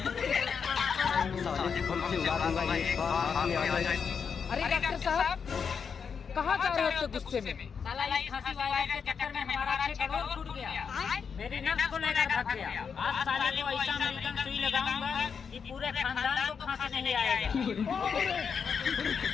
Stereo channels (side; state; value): right; quieter; 6.4 dB